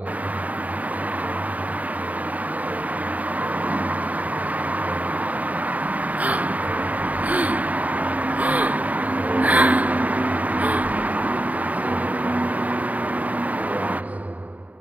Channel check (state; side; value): late; left; 0.072 ms